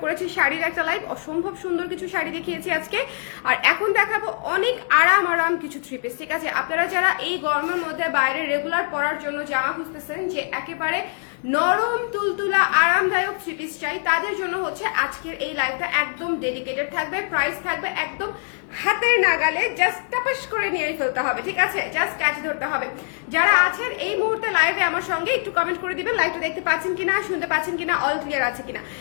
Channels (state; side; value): silent; right; 55 dB below the other